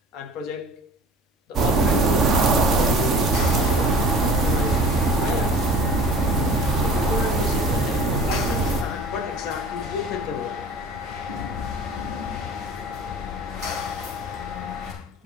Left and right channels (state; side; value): normal; both; correlation 0.42